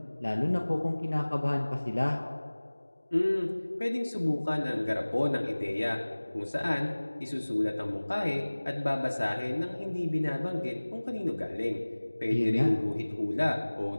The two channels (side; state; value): both; inverted; correlation -1.00